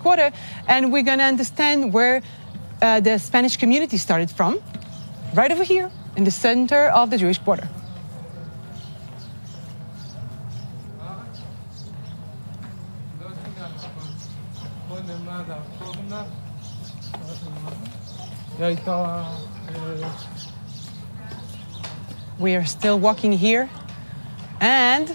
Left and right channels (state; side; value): inverted; both; correlation -1.00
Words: and we're going to understand where the Spanish community started from, right over here in the center of the Jewish quarter. We are still walking here, and